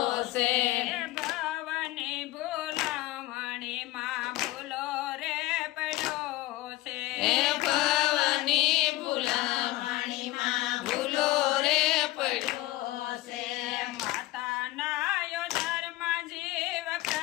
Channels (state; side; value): quieter; right; 17.8 dB